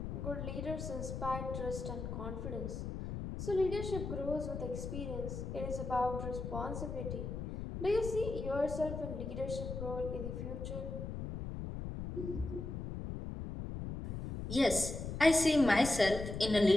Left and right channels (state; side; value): noise; left; rumble, 6 dB below the sound